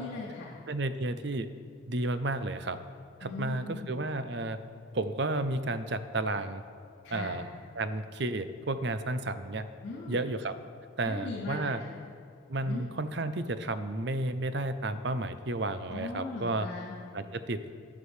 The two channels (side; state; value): both; normal; correlation 0.30